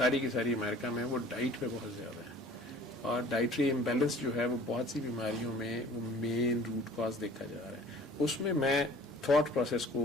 کی ساری امریکہ میں وہ ڈائٹ پہ بہت زیادہ ہے, اور ڈائٹری امبیلنس جو ہے وہ بہت سی بیماریوں میں وہ مین روٹ کاز دیکھا جا رہا ہے. اس میں میں تھاٹ پروسیس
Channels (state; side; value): normal; both; correlation 0.49